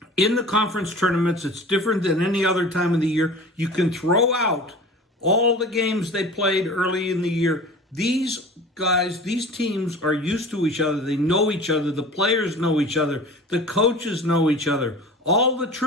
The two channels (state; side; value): normal; both; correlation 0.39